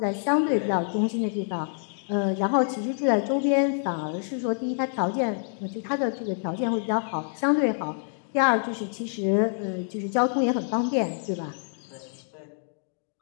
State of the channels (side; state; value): right; silent; 60 dB below the other